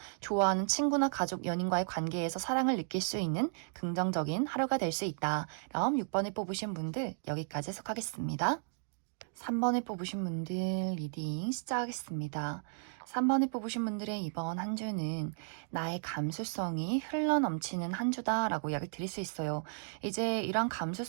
좋아하는 친구나 가족, 연인과의 관계에서 사랑을 느낄 수 있는 긍정적인 하루가 될 수 있다. 그럼 6번을 뽑으신 분들 여기까지 해석하겠습니다. 3번을 뽑으신 분들 리딩 시작하겠습니다. 3번을 뽑으신 분들의 이번 한 주는 나의 감수성이 흘러넘치는 한 주다라고 이야기를 드릴 수 있어요. 이제 이런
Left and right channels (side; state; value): left; silent; digital silence